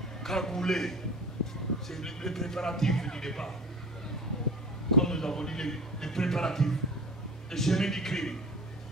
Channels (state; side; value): normal; both; correlation 0.37